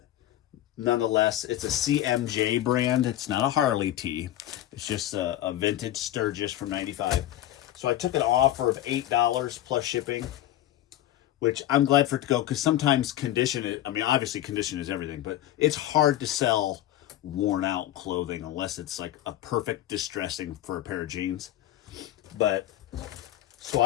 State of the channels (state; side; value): quieter; right; 13.4 dB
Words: nonetheless, it's a CMJ brand. It's not a Harley tee. It's just a vintage Sturgis from 95. So I took an offer of $8 plus shipping, which I'm glad for it to go, because sometimes condition, I mean, obviously condition is everything, but it's hard to sell worn out clothing unless it's like a perfect distressing for a pair of jeans. But so